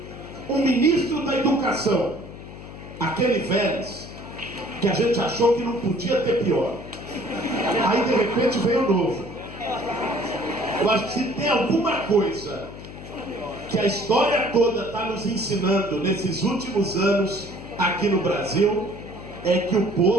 um ministro da educação, aquele Vélez, que a gente achou que não podia ter pior, aí de repente veio o novo. Eu acho que se tem alguma coisa que a história toda está nos ensinando nesses últimos anos aqui no Brasil, é que o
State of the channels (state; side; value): noise; left; hum, 14 dB below the sound